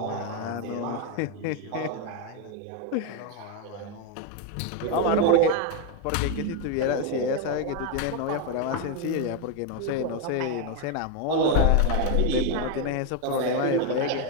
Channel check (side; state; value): both; different; correlation 0.01